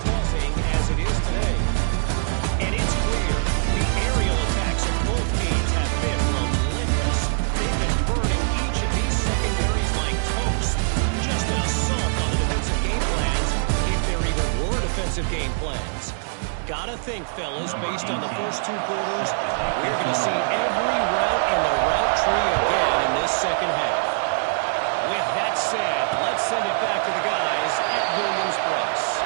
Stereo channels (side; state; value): left; silent; digital silence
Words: buzzing as it is today. And it's clear the aerial attacks of both teams have been relentless. They've been burning each of these secondaries like toast. Just an assault on the defensive game plans, if there even were defensive game plans. Gotta think, fellas, based on the first 2 quarters, we're going to see every route in the route tree again in this second half. With that said, let's send it back to the guys at Williams-Brice.